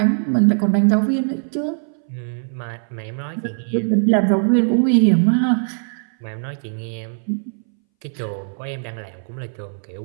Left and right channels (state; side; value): silent; left; 62 dB below the other